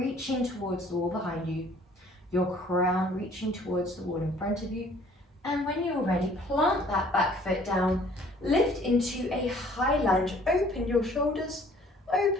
towards the wall behind you, your crown reaching towards the wall in front of you, and when you're ready, plant that back foot down, lift into a high lunge, open your shoulders,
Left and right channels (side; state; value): both; normal; correlation 0.56